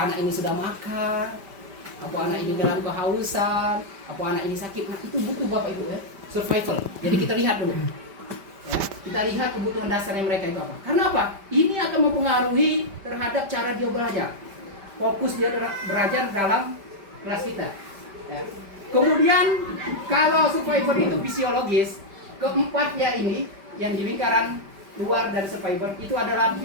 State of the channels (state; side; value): late; left; 5.1 ms